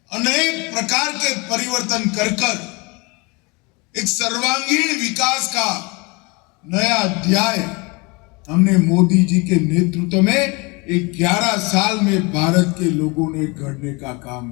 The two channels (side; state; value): right; quieter; 27.8 dB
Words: अनेक प्रकार के परिवर्तन कर एक सर्वांगीण विकास का नया अध्याय हमने मोदी जी के नेतृत्व में 11 साल में भारत के लोगों ने गढ़ने का काम